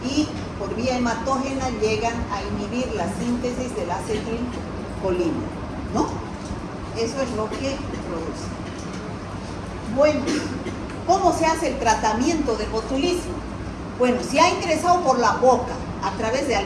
y por vía hematógena llegan a inhibir la síntesis del acetilcolina, ¿no? Eso es lo que produce. Bueno, ¿cómo se hace el tratamiento del botulismo? Bueno, si ha ingresado por la boca a través de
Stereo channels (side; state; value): both; identical; correlation 1.00